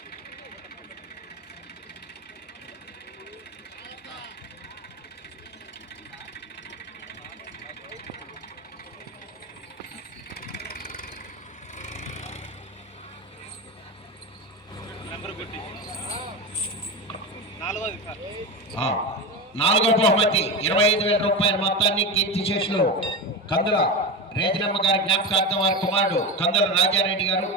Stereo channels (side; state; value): both; normal; correlation 0.21